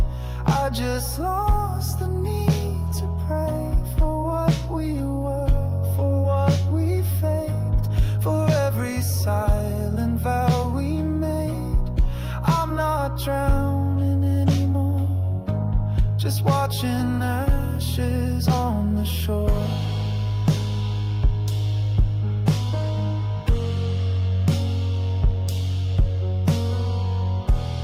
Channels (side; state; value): both; identical; correlation 1.00